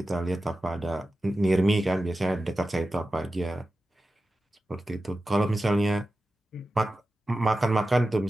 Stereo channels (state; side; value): normal; both; correlation 0.93